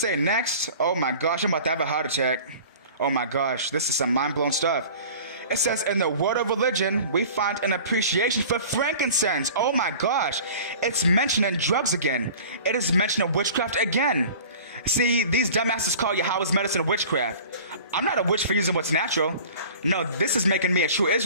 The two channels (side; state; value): both; inverted; correlation -0.43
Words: next? Oh my gosh, I'm about to have a heart attack. Oh my gosh, this is some mind-blown stuff. It says, in the world of religion, we find an appreciation for frankincense. Oh my gosh, it's mentioning drugs again. It is mentioning witchcraft again. See, these dumbasses call Yahweh's medicine witchcraft. I'm not a witch for using what's natural. No, this is making me a true